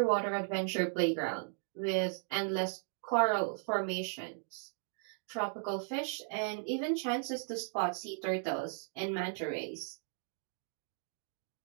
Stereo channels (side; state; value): left; silent; digital silence